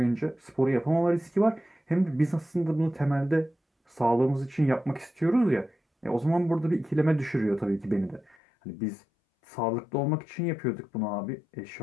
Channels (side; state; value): right; drops out; at 8.3 s